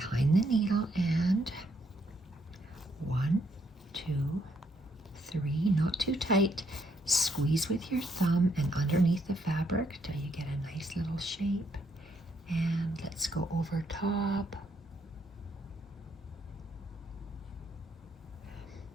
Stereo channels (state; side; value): normal; both; correlation 0.73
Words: the needle, and 1, 2, 3, not too tight. Squeeze with your thumb and underneath the fabric till you get a nice little shape. And let's go over top.